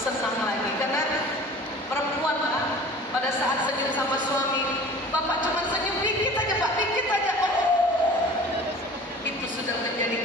lagi. Karena perempuan Pak, pada saat senyum sama suami, Bapak cuma senyum dikit aja Pak, dikit aja Pak. Itu sudah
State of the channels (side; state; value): both; normal; correlation 0.43